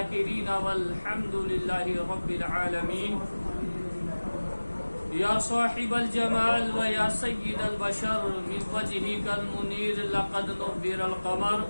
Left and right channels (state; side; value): inverted; both; correlation -1.00